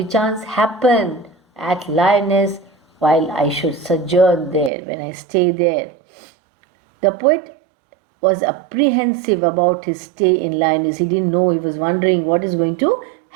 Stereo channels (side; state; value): left; drops out; at 4.7 s